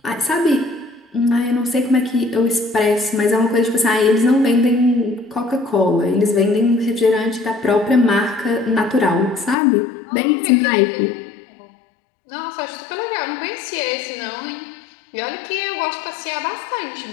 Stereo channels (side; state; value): right; drops out; at 9.6 s